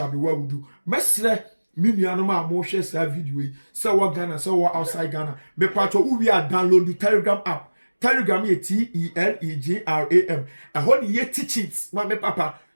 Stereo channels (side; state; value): both; inverted; correlation -1.00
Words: be well with you. Mesre Minianoma mo share sa video. So what Ghana, so what outside Ghana. Me patcho we are download the Telegram app. Telegram ye Telegram. I hold ye teachings. Ma me papa.